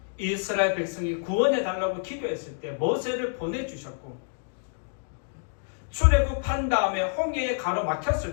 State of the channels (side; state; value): right; silent; digital silence